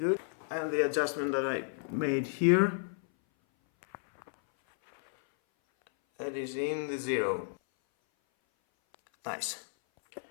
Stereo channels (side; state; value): right; silent; 56 dB below the other